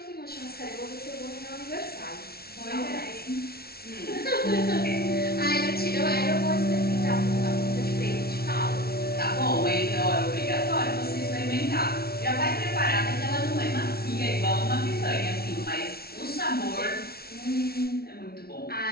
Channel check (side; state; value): right; late; 0.44 ms